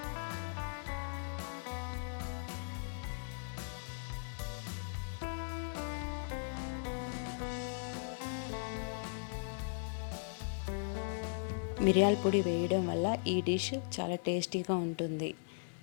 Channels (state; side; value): silent; right; digital silence